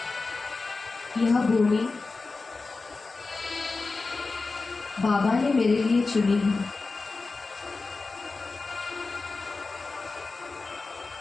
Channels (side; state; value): right; quieter; 3.9 dB